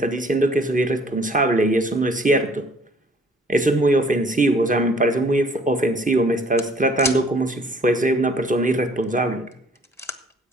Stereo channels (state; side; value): normal; both; correlation 0.57